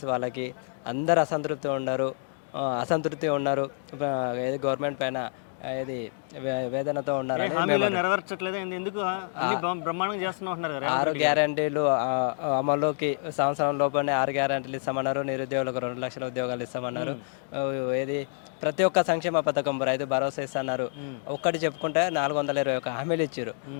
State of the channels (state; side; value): silent; right; digital silence